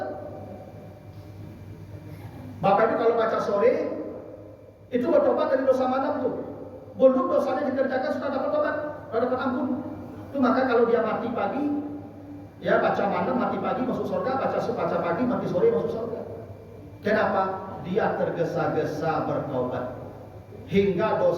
Bapak Ibu kalau baca sore itu bertobat dari dosa malam tuh. Belum dosanya dikerjakan sudah dapat tobat, sudah dapat ampun. Itu maka kalau dia mati pagi, ya baca malam mati pagi masuk surga, baca pagi mati sore masuk surga. Kenapa? Dia tergesa-gesa bertobat. Hingga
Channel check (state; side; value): identical; both; correlation 1.00